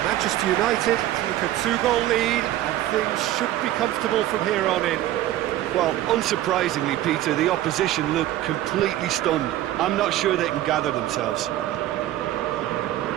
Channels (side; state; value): left; quieter; 14.0 dB